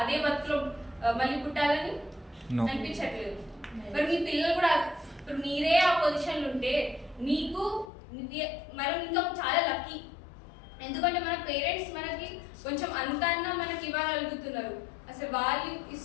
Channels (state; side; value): drops out; right; at 7.9 s